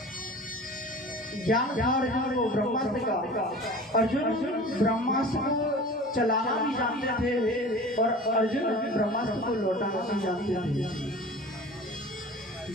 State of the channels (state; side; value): normal; both; correlation 0.39